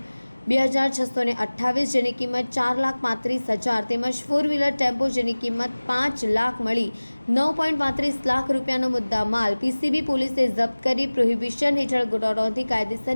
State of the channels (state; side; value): inverted; both; correlation -1.00